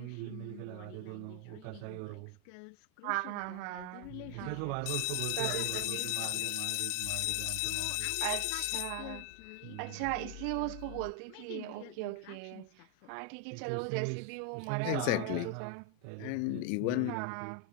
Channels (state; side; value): different; both; correlation 0.01